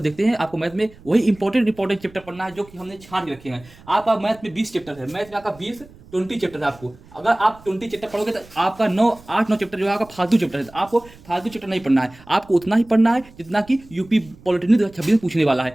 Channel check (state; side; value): noise; right; rumble, 23 dB below the sound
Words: हैं। आपको मैथ में वही इंपॉर्टेंट चैप्टर पढ़ना है जो कि हमने छांट के रखे हैं। आपका मैथ में 20 चैप्टर है, मैथ में आपका 20 चैप्टर है। आपको अगर आप 20 चैप्टर पढ़ोगे तो आपका 8-9 चैप्टर जो है आपका फालतू चैप्टर है। आपको फालतू चैप्टर नहीं पढ़ना है, आपको उतना ही पढ़ना है जितना कि यूपी पॉलिटेक्निक 2026 में पूछने वाला